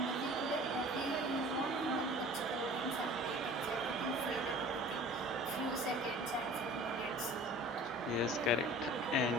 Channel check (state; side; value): normal; both; correlation 0.45